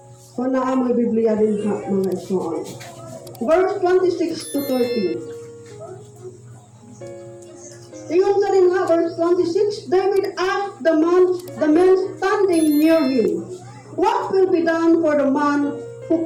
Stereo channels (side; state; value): both; identical; correlation 1.00